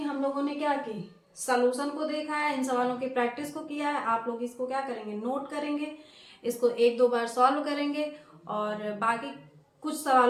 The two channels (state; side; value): identical; both; correlation 1.00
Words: हम लोगों ने क्या की, सॉल्यूशन को देखा है, इन सवालों की प्रैक्टिस को किया है। आप लोग इसको क्या करेंगे, नोट करेंगे, इसको 1-2 बार सॉल्व करेंगे और बाकी कुछ